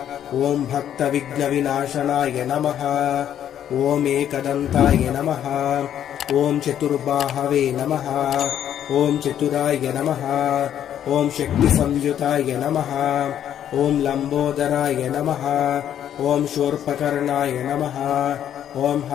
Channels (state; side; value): quieter; right; 10.2 dB